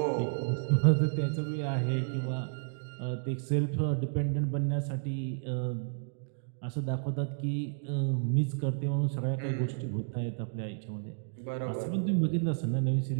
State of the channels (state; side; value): silent; left; digital silence